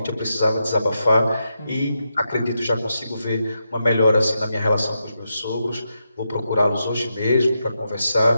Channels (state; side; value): inverted; both; correlation -0.86